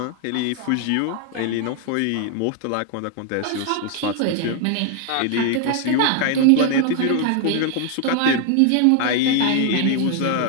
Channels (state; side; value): different; both; correlation 0.00